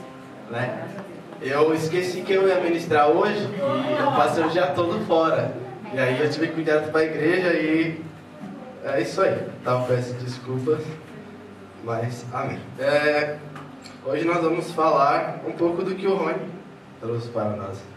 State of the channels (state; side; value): identical; both; correlation 1.00